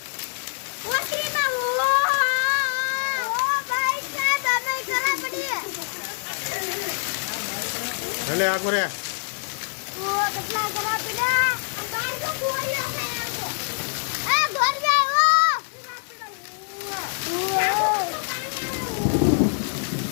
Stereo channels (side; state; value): right; silent; digital silence